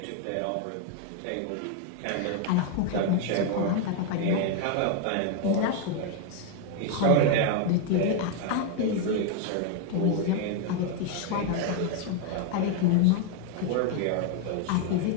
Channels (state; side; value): different; both; correlation 0.01